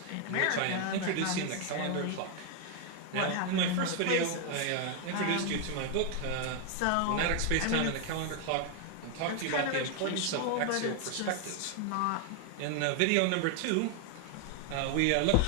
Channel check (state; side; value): different; both; correlation 0.01